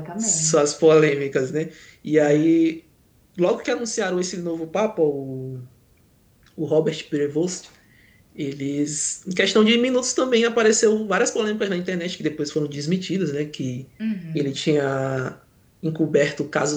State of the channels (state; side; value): identical; both; correlation 1.00